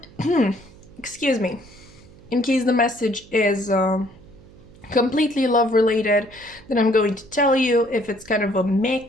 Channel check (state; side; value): noise; right; hum, 23 dB below the sound